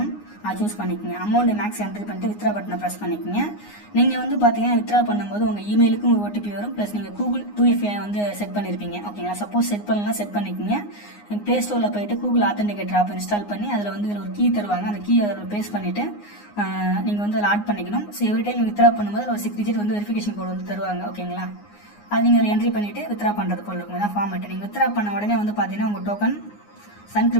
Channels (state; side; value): late; right; 9.6 ms